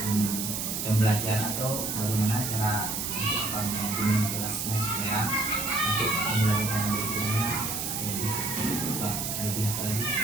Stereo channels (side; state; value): right; noise; hiss, 2 dB below the sound